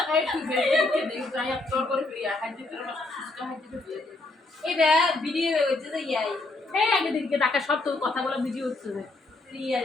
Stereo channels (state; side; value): quieter; right; 3.0 dB